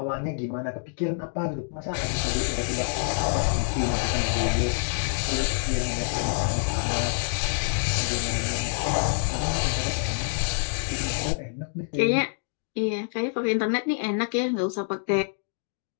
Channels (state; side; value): silent; right; digital silence